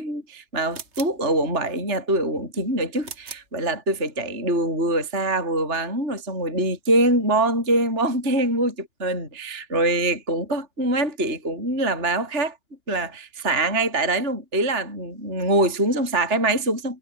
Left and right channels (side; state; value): left; late; 2.9 ms